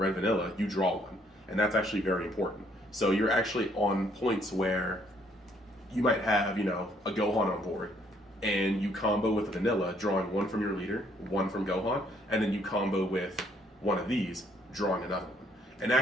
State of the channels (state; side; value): normal; both; correlation 0.67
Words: vanilla, you draw 1. And that's actually very important. So you're actually on points where you might have, a Gohan on board, and you combo with a vanilla, drawing 1 from your leader, 1 from Gohan, and then you combo with one of these, drawing another one. And